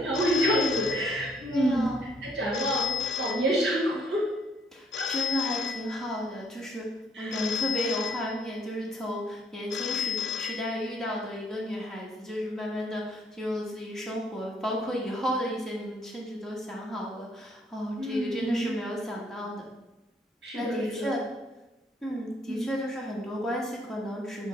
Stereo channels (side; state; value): both; normal; correlation 0.66